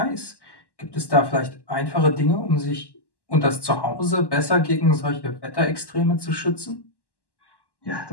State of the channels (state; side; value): late; right; 1.1 ms